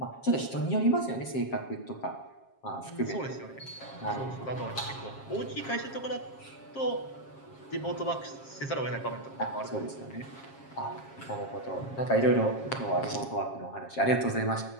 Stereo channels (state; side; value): late; right; 7.4 ms